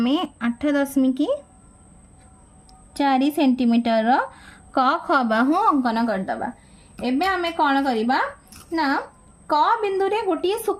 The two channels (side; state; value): both; identical; correlation 1.00